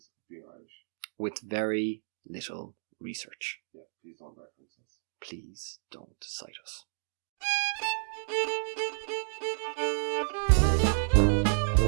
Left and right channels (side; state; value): left; silent; digital silence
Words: of being Irish. With very little research. Yeah, please don't reference us. Please don't cite us.